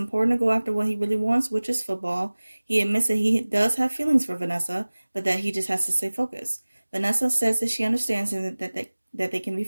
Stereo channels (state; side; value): inverted; both; correlation -1.00